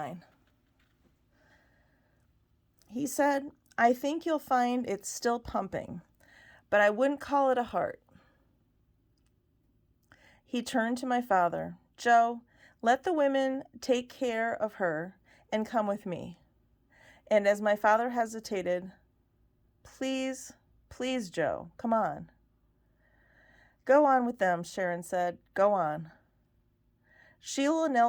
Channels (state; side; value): identical; both; correlation 1.00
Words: He said, "I think you'll find it's still pumping, but I wouldn't call it a heart." He turned to my father. "Joe, let the women take care of her and come with me." And as my father hesitated, "Please, please, Joe, come on." "Go on with them," Sharon said. "Go on." Sheila